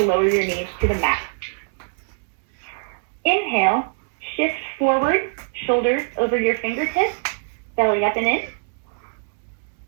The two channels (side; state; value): left; silent; digital silence